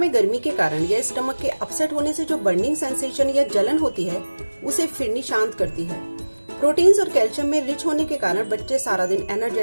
गर्मी के कारण या स्टमक के अपसेट होने से जो बर्निंग सेंसेशन या जलन होती है, उसे फिरनी शांत करती है। प्रोटीन्स और कैल्शियम में रिच होने के कारण बच्चे सारा दिन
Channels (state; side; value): inverted; both; correlation -1.00